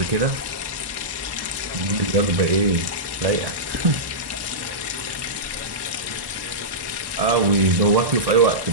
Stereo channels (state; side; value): late; left; 1.1 ms